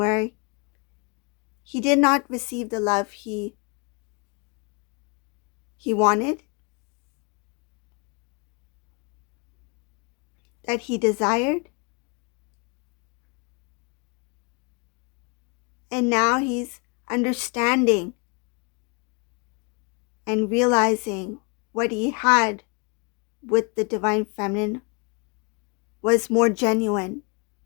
he did not receive the love he wanted, that he desired. And now he's understanding and realizing what he had with the divine feminine was more genuine,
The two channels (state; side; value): quieter; right; 32.5 dB